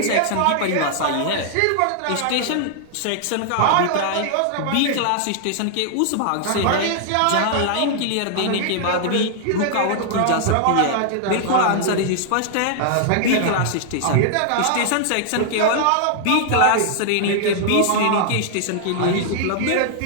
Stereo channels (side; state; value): both; different; correlation -0.01